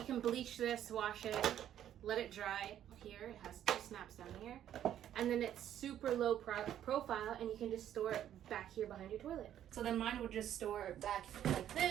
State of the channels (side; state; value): left; quieter; 10.9 dB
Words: can bleach this, wash it, let it dry. Here it has two snaps down here, and then it's super low profile, and you can just store it back here behind your toilet. So then mine would just store back like